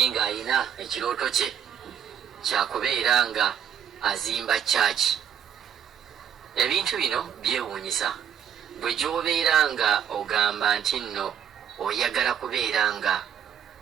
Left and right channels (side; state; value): left; quieter; 9.0 dB